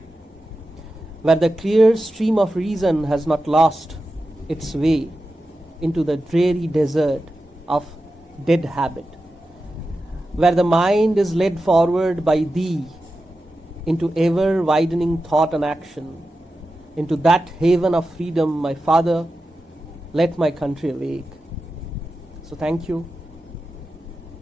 where the clear stream of reason has not lost its way into the dreary desert of dead habit, where the mind is led forward by thee into ever widening thought and action, into that haven of freedom, my Father, let my country awake. So thank you.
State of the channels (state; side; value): normal; both; correlation 0.92